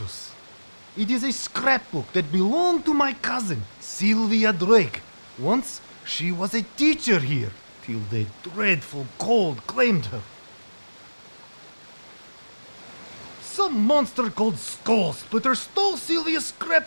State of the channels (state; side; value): inverted; both; correlation -1.00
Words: It is a scrapbook that belonged to my cousin, Sylvia Drake. Once, she was a teacher here, till the dreadful cold claimed her. Some monster called Skull Splitter stole Sylvia's